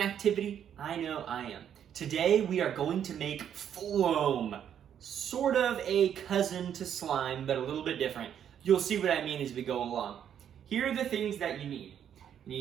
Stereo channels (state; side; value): quieter; left; 9.2 dB